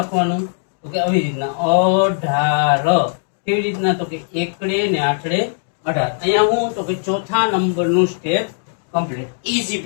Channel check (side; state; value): right; silent; digital silence